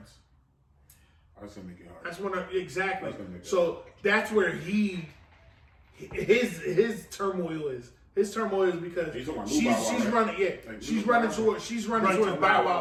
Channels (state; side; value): identical; both; correlation 1.00